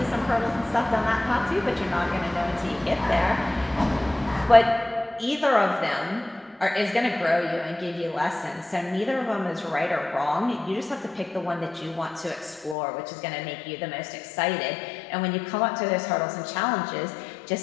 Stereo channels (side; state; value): right; drops out; at 12.8 s